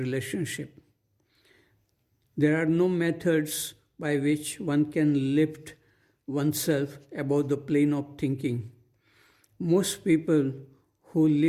There are no methods by which one can lift oneself above the plane of thinking. Most people who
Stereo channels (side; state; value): both; identical; correlation 1.00